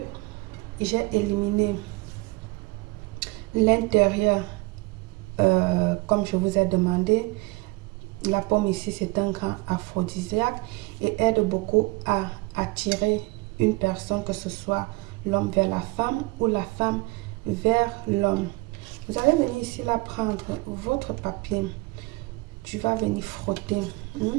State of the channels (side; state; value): left; quieter; 24.3 dB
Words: J'ai éliminé l'intérieur comme je vous ai demandé. La pomme ici, c'est un grand aphrodisiaque et aide beaucoup à attirer une personne, que ce soit l'homme vers la femme ou la femme vers l'homme. Vous allez venir ici là prendre votre papier. Tu vas venir frotter